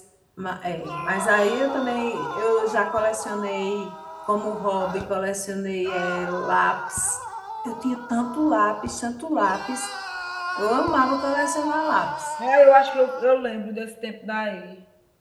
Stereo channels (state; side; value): identical; both; correlation 1.00